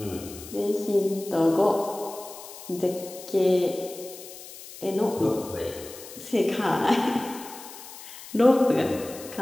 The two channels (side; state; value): left; noise; hiss, 15 dB below the sound